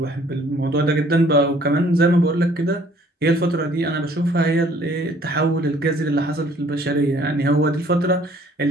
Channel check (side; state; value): both; normal; correlation 0.58